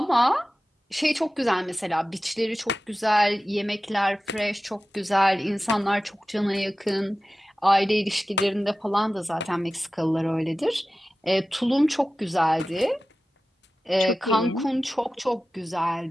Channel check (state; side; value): normal; both; correlation 0.95